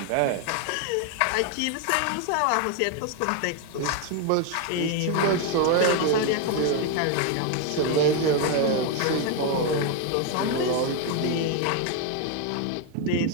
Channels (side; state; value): both; different; correlation 0.01